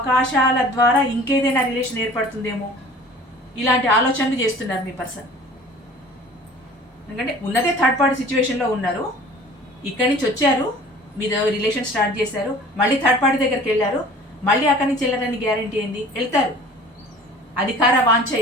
ద్వారా ఇంకేదైనా రిలేషన్ ఏర్పడుతుందేమో, ఇలాంటి ఆలోచనలు చేస్తున్నారు మీ పర్సన్. ఎందుకంటే ఉన్నదే థర్డ్ పార్టీ సిచ్యువేషన్లో ఉన్నారు, ఇక్కడి నుంచి వచ్చారు, మీద రిలేషన్ స్టార్ట్ చేశారు, మళ్ళీ థర్డ్ పార్టీ దగ్గరికి వెళ్ళారు, మళ్ళీ అక్కడి నుంచి వెళ్ళారని గ్యారంటీ ఏంది? వెళ్తారు. అధికార వాంఛ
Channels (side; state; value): both; normal; correlation 0.46